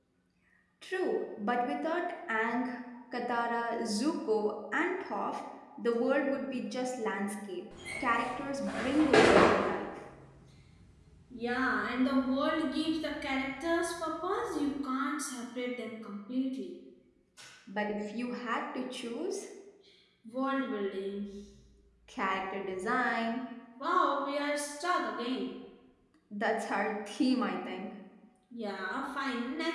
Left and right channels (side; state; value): both; identical; correlation 1.00